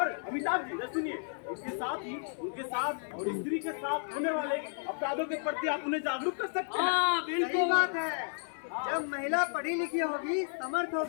अमिताभ जी सुनिए, इसके साथ ही उनके साथ और स्त्री के साथ होने वाले अपराधों के प्रति आप उन्हें जागरूक कर सकते हैं। हाँ सही बिल्कुल। बात है। जब महिला पढ़ी लिखी होगी, समर्थ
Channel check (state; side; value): silent; right; digital silence